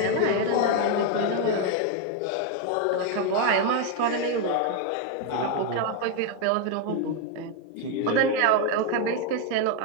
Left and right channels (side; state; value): both; different; correlation 0.01